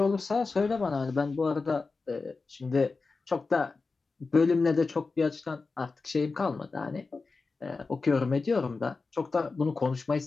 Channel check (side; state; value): right; quieter; 4.1 dB